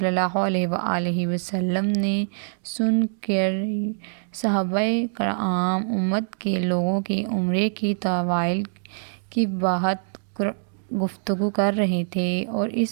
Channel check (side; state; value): left; silent; digital silence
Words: اللہ علیہ وآلہ وسلم نے سن کر صحابہ کرام امت کے لوگوں کی عمرے کی طوائل کی بات گفتگو کر رہے تھے اور